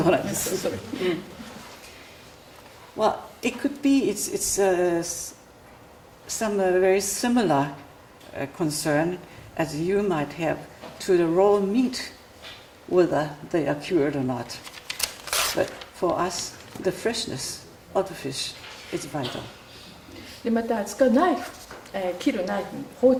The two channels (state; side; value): identical; both; correlation 1.00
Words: うなんです。それ。Well, it could be it's some very similar concern as you might have to the raw meat, whether they are cured or not. But for us, the freshness of the fish is vital. でまた使うナイフ、切るナイフ、包